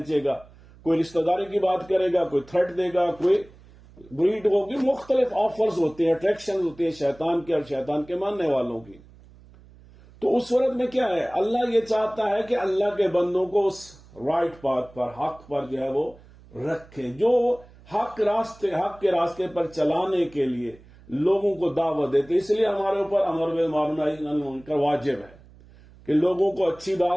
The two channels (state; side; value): noise; right; hum, 24 dB below the sound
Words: گا، کوئی رشتہ داری کی بات کرے گا، کوئی تھریٹ دے گا، کوئی بریڈ ہوگی. مختلف آفرز ہوتے ہیں، اٹریکشن ہوتی ہیں شیطان کے اور شیطان کے ماننے والوں کی. تو اس صورت میں کیا ہے؟ اللہ یہ چاہتا ہے کہ اللہ کے بندوں کو اس رائٹ پاتھ پر، حق پر جو ہے وہ رکھیں، جو حق کے راستے پر چلانے کے لیے لوگوں کو دعوت دیتے. اس لیے ہمارے اوپر امر بالمعروف نہی عن المنکر واجب ہے کہ لوگوں کو اچھی